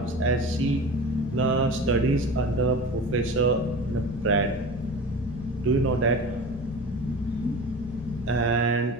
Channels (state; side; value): normal; both; correlation 0.33